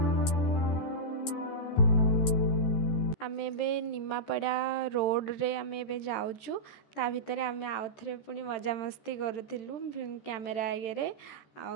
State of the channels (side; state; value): right; late; 14 ms